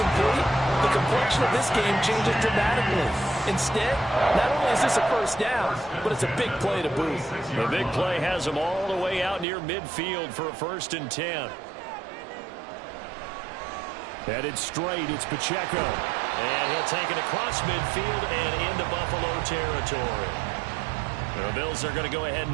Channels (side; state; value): left; drops out; at 9.5 s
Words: the complexion of this game changes dramatically. Instead, not only is this a first down, but it's a big play to boot. The big play has him all the way out near midfield for a 1st and 10. Headed straight, it's Pacheco. And he'll take it across midfield and into Buffalo territory. The Bills are going to go ahead